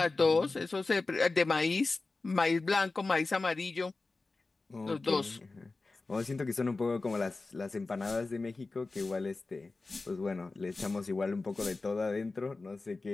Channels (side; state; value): right; quieter; 3.6 dB